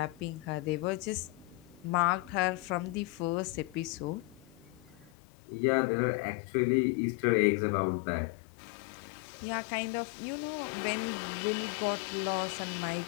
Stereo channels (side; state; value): right; drops out; at 5.1 s